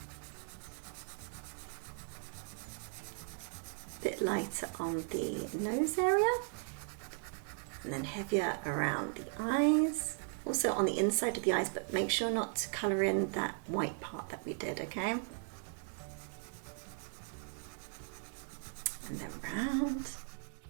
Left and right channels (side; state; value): left; silent; 53 dB below the other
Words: A bit lighter on the nose area and then heavier around the eyes. also on the inside of the eyes, but make sure not to colour in that white part that we did, okay? And then round.